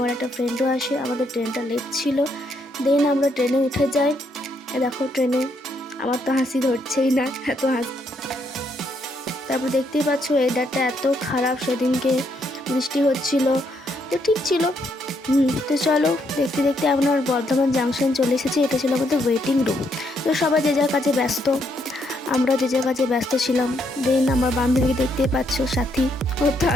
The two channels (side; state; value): both; normal; correlation 0.75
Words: একটা ফ্রেন্ডও আসে। আমাদের ট্রেনটা লেট ছিল, দেন আমরা ট্রেনে উঠে যাই। দেখো ট্রেনে আমার তো হাসি ধরছেই না, এত হাসি। তারপর দেখতেই পাচ্ছ ওয়েদারটা এত খারাপ, সেদিনকে বৃষ্টি হচ্ছিল, তো ঠিক ছিল। তো চলো দেখতে দেখতে আমরা বর্ধমান জাংশন চলে এসেছি। এটা ছিল আমাদের ওয়েটিং রুম। তো সবাই যে যার কাছে ব্যস্ত, আমরা যে যার কাছে ব্যস্ত ছিলাম। দেন আমার বান্ধবীকে দেখতেই পাচ্ছ, সাথী, ওর তো